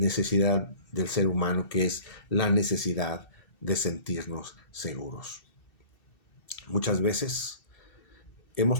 del ser humano, que es la necesidad de sentirnos seguros. Muchas veces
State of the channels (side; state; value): right; late; 2.7 ms